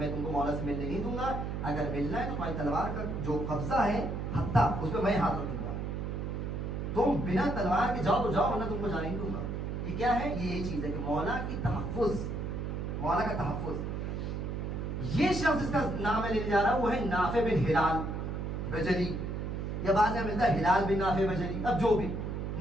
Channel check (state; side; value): noise; right; hum, 3 dB below the sound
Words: تم کو مولا سے ملنے نہیں دوں گا, اگر ملنا ہے تو تمہاری تلوار کا جو قبضہ ہے ہتھا اس پہ میں ہاتھ رکھوں گا, تم بنا تلوار کے جاؤ تو جاؤ ورنہ تم کو جانے نہیں دوں گا. یہ کیا ہے؟ یہ چیز ہے کہ مولا کی تحفظ, مولا کا تحفظ. یہ شخص جس کا نام میں لینے جا رہا ہوں وہ ہے نافع بن ہلال بجلی, یا بعض میں ملتا ہے ہلال بن نافع بجلی, اب جو بھی